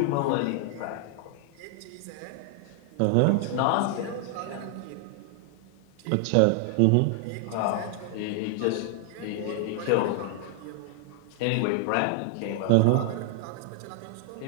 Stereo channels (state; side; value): different; both; correlation 0.00